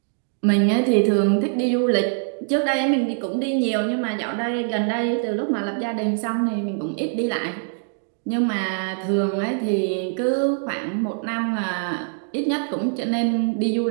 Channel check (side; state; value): left; silent; digital silence